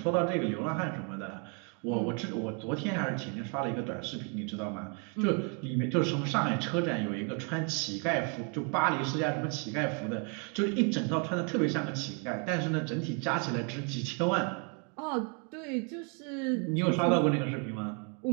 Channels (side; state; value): left; quieter; 37.8 dB